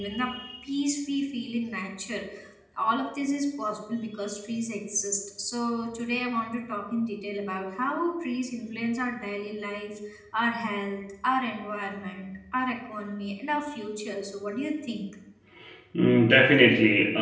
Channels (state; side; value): identical; both; correlation 1.00